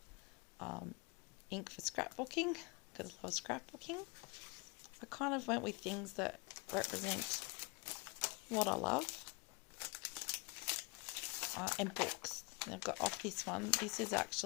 ink for scrapbooking, because I love scrapbooking. I kind of went with things that represent what I love, and books. I've got off this one. This is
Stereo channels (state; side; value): quieter; right; 28.4 dB